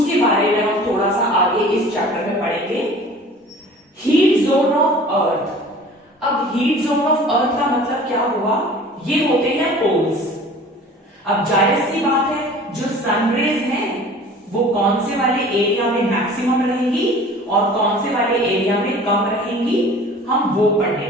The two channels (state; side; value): normal; both; correlation 0.45